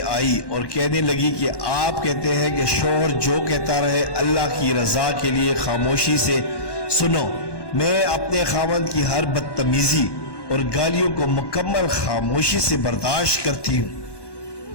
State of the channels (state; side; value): late; right; 1.1 ms